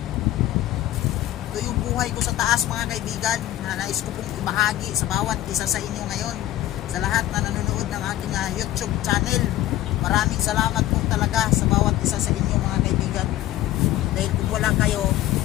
Buhay ko sa taas mga kaibigan na nais ko pong ibahagi sa bawat isa sa inyo ngayon, sa lahat na nanonood ng aking YouTube channel. Maraming salamat po talaga sa bawat isa sa inyo mga kaibigan, dahil kung wala kayo,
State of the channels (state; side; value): quieter; right; 14.4 dB